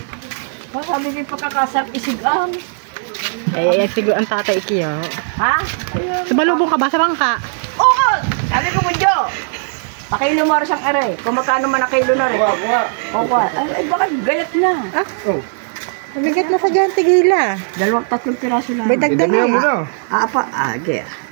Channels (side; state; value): left; silent; digital silence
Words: Masabi ko pagkakasap isigang. Eh, siguro ang tatay Ikiyo. Ha? Sumalubong ka ba sa bangka? Oo! Sabi ko mo, Jo. Pakilo mo rin siyang aray. Kung magkano man na kilo na rin. Opo. Ay, baka gayat na. Oh. Mabigat na sa dyan, tigila. 2-3 piraso lang. May dagdag Damihan mo na. na. Apa. Gaya.